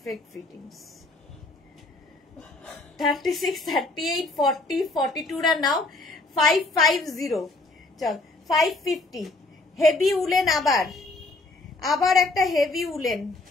ফিটিংস। 36, 38, 40, 42 রা নাও। 550, চল 550। হেভি উলেন, আবার একটা হেভি উলেন,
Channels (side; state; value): right; quieter; 3.1 dB